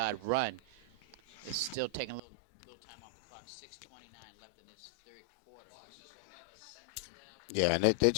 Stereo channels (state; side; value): drops out; right; at 2.2 s